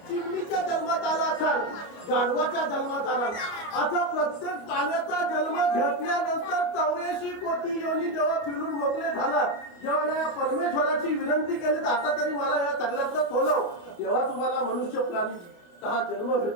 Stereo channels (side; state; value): right; late; 29 ms